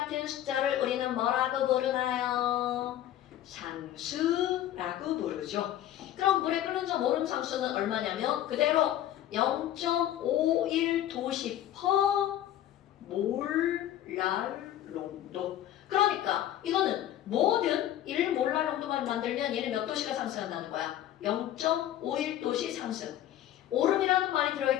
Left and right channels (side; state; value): right; quieter; 12.3 dB